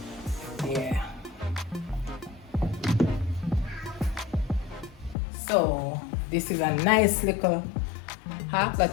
Yeah. So this is a nice little hack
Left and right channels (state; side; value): drops out; right; at 5.2 s